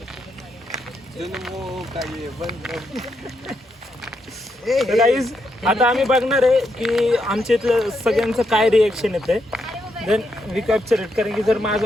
गाईज आता आम्ही बघणार आहे की आमच्या इथलं सगळ्यांचं काय रिएक्शन येते. Then we capture it. कारण की जर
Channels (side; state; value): both; normal; correlation 0.80